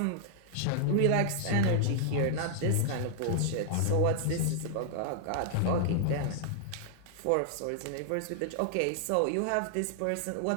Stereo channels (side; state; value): both; different; correlation -0.01